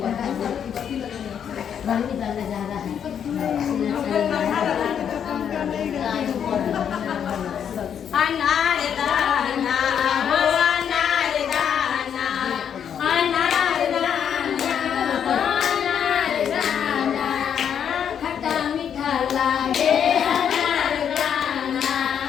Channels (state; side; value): quieter; right; 8.4 dB